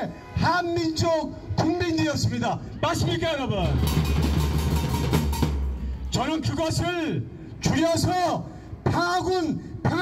한민족 국민들이었습니다. 맞습니까 여러분? 저는 그것을 줄여서 평화군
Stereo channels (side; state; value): both; identical; correlation 1.00